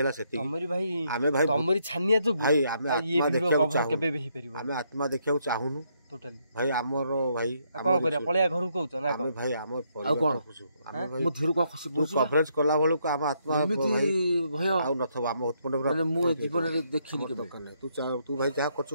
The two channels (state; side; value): inverted; both; correlation -0.74